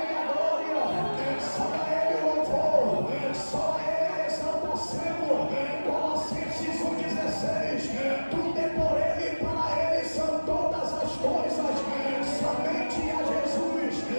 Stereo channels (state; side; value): inverted; both; correlation -1.00